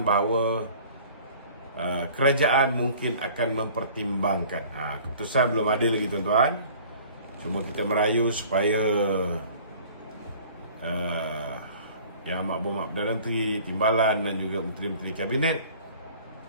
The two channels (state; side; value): inverted; both; correlation -0.49